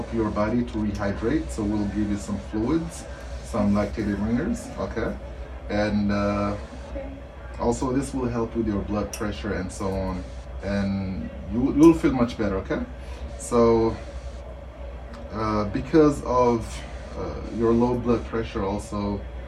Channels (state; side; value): identical; both; correlation 1.00